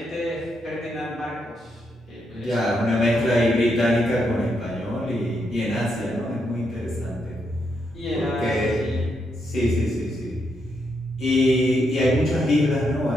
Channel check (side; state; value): both; normal; correlation 0.80